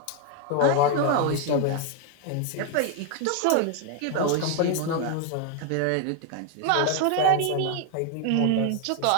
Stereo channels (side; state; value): both; different; correlation 0.01